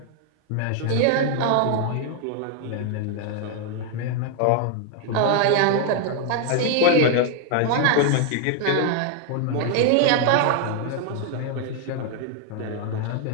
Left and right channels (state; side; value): different; both; correlation 0.00